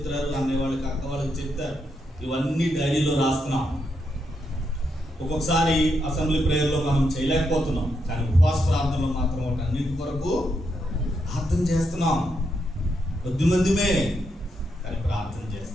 అనేవాళ్ళకి అక్క వాళ్ళకి చెప్తారు, ఇవన్నీ డైరీలో రాస్తున్నాం. ఒక్కొక్కసారి అసెంబ్లీ ప్రేయర్లో మనం చేయలేకపోతున్నాం, కానీ ఉపవాస ప్రార్థనలో మాత్రం వాటి అన్నింటి కొరకు ప్రార్థన చేస్తున్నాం. కొద్దిమందిమే కానీ ప్రార్థన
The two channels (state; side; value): normal; both; correlation 0.81